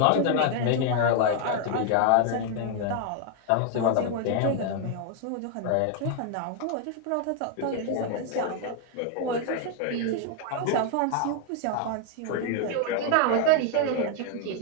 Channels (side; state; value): both; different; correlation 0.00